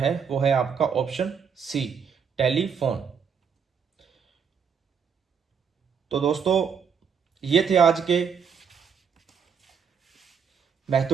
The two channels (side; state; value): left; quieter; 6.7 dB